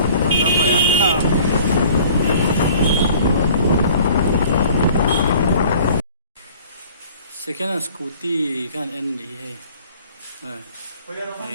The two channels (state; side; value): inverted; both; correlation -0.50